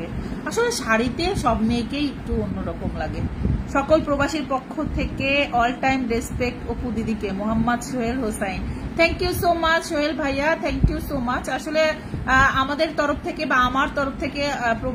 আসলে শাড়িতে সব মেয়েকেই একটু অন্যরকম লাগে। সকল প্রবাসীর পক্ষ থেকে অল টাইম রেসপেক্ট অপু দিদিকে। Mohammad Sohel Hossain, thank you so much Sohel ভাইয়া, থ্যাংক ইউ সো মাচ। আসলে আমাদের তরফ থেকে বা আমার তরফ থেকে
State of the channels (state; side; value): identical; both; correlation 1.00